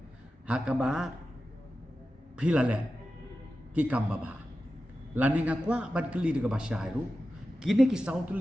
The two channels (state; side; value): normal; both; correlation 0.93